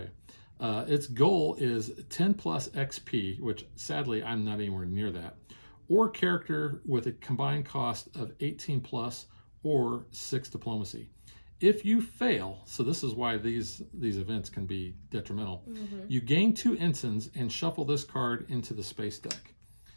Its goal is 10 plus XP, which sadly I'm not anywhere near that, or character with a combined cost of 18 plus or 6 diplomacy. If you fail, so this is why these events can be detrimental, you gain 2 ensigns and shuffle this card into the space deck.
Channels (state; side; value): inverted; both; correlation -1.00